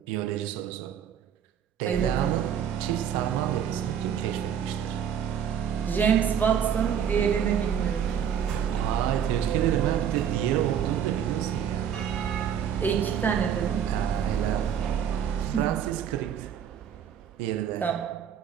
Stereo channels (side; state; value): left; quieter; 8.6 dB